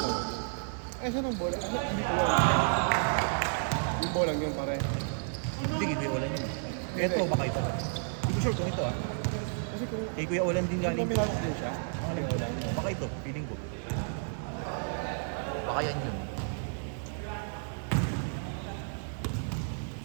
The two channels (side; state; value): left; silent; 57 dB below the other